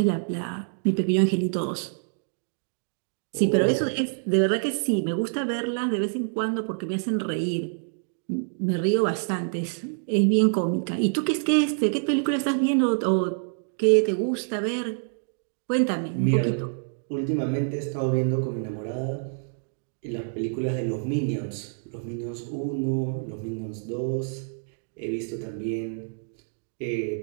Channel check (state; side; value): silent; left; digital silence